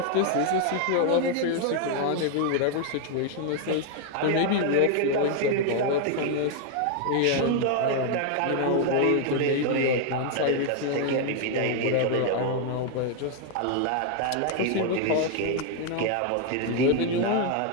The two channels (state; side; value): different; both; correlation 0.00